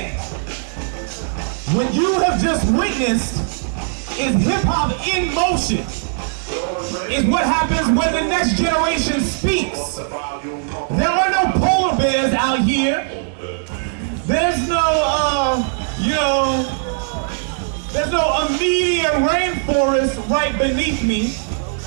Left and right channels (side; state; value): left; silent; 66 dB below the other